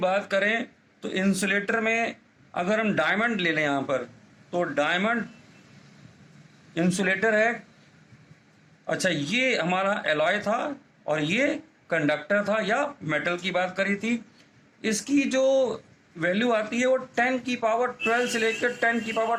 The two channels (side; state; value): both; identical; correlation 1.00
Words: करें, तो इंसुलेटर में अगर हम डायमंड ले लें यहाँ पर, तो डायमंड इंसुलेटर है। अच्छा, ये हमारा एलॉय था और ये कंडक्टर था, या मेटल की बात करी थी। इसकी जो वैल्यू आती है वो 10 की पावर 12 से लेकर 10 की